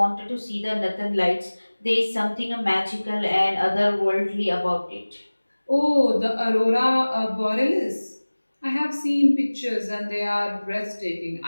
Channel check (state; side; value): inverted; both; correlation -1.00